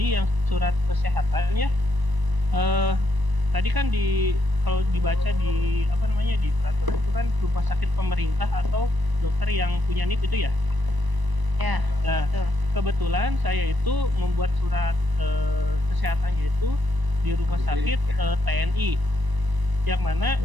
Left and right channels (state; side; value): late; left; 1.0 ms